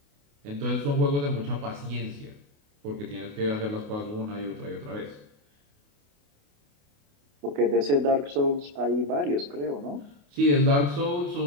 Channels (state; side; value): late; left; 28 ms